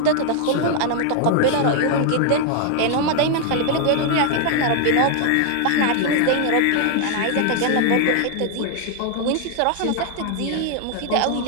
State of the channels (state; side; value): different; both; correlation 0.00